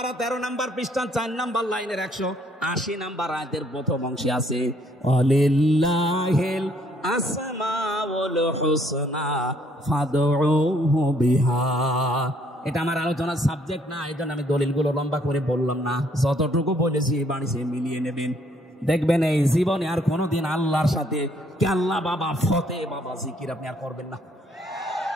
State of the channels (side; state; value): both; normal; correlation 0.66